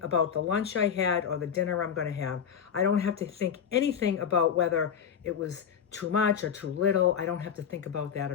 the lunch I had or the dinner I'm going to have. I don't have to think anything about whether it was too much or too little. I don't have to think about that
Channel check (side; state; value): right; quieter; 7.9 dB